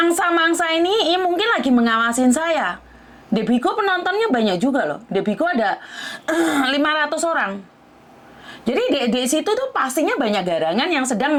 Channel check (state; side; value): identical; both; correlation 1.00